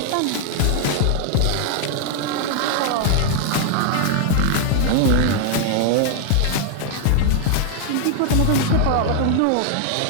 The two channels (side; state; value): both; different; correlation 0.00